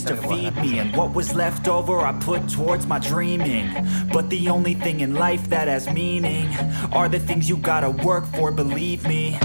to feed me. And what was left over I put towards my dreaming. But the only thing in life that has meaning are the things you gotta work for, believe me.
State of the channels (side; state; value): both; inverted; correlation -1.00